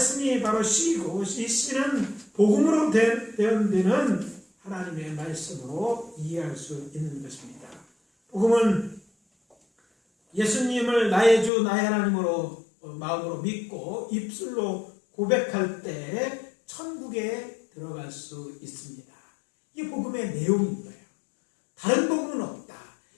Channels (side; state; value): right; drops out; at 11.5 s